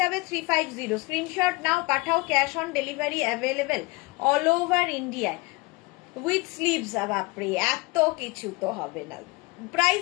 350, স্ক্রিনশট নাও পাঠাও, cash on delivery available all over ইন্ডিয়ায় উইথ স্লিভস। বাপরে এত কিছু তো হবে না।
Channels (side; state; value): right; quieter; 25.2 dB